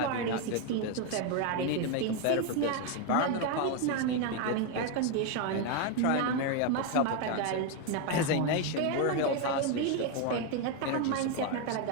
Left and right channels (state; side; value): different; both; correlation 0.02